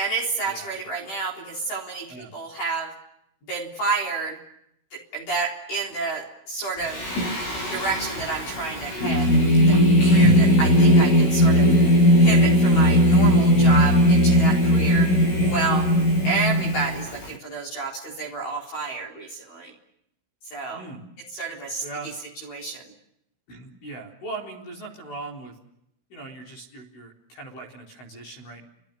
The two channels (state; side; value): late; right; 16 ms